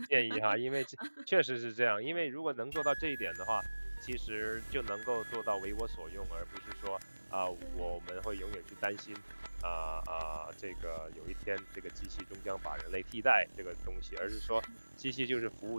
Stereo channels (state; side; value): inverted; both; correlation -1.00